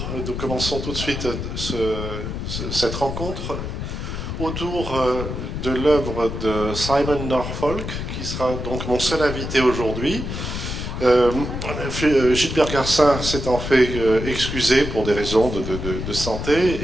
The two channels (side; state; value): left; noise; rumble, 5 dB below the sound